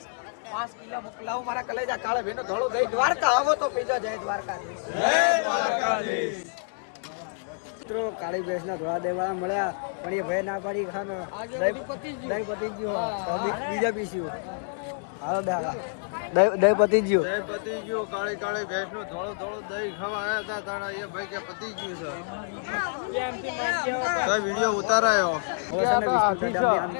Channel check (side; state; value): right; silent; digital silence